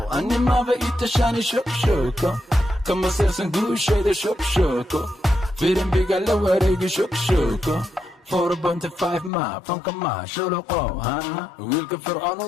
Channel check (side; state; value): right; drops out; at 9.3 s